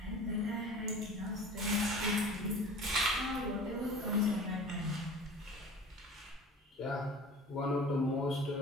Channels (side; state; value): both; normal; correlation 0.41